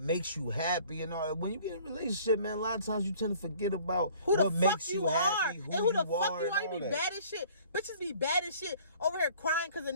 makes you happy and all that. When you get in a relationship, man, a lot of times you tend to forget about what makes you happy, who the fuck you are. You be bad as shit. Bitches be bad as shit over here crying because a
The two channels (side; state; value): both; inverted; correlation -0.52